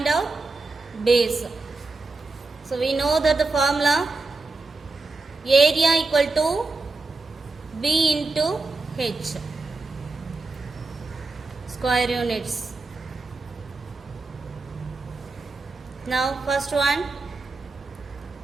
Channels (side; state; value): left; quieter; 3.6 dB